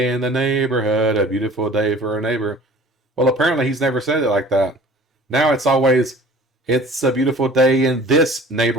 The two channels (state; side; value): normal; both; correlation 0.47